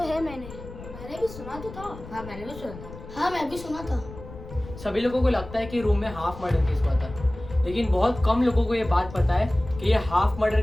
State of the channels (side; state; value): left; noise; rumble, 14 dB below the sound